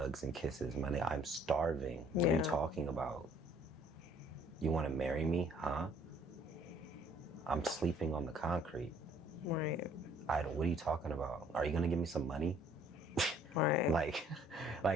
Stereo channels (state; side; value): normal; both; correlation 0.60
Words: and kisses, my nigga. I'm starving. What are you talking about? You want to marry me, huh? I'm sleeping on the concrete. Right. What are you talking about? Are you going to give me some money? Right. Like